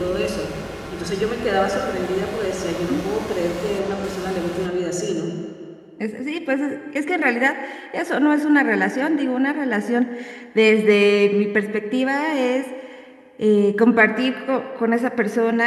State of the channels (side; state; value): both; identical; correlation 1.00